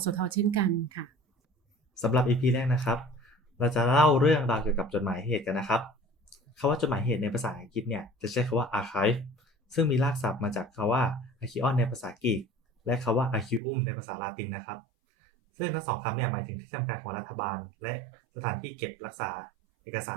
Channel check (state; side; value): drops out; left; at 13.6 s